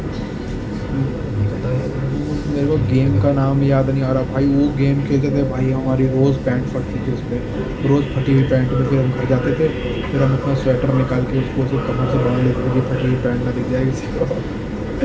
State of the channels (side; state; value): both; identical; correlation 1.00